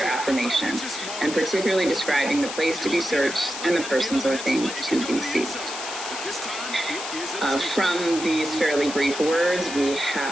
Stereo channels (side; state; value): left; noise; hiss, 8 dB below the sound